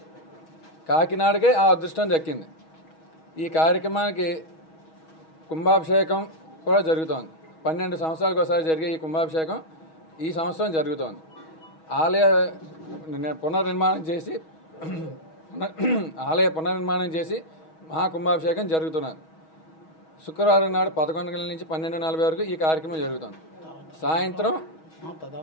కాకినాడకే ఆ అదృష్టం దక్కింది. ఈ కార్యక్రమానికి కుంభాభిషేకం కూడా జరుగుతోంది. 12 సంవత్సరాలకు ఒకసారి జరిగే ఈ కుంభాభిషేకం ఈ సంవత్సరం జరుగుతోంది. ఆలయ పునర్నిర్మాణం చేసి మహాకుంభాభిషేకం జరుగుతున్నది. శుక్రవారం నాడు 11 గంటల నుంచి 12:40 వరకు ఈ కార్యక్రమం జరుగుతుంది. సాయంత్రం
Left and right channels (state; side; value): late; right; 6.3 ms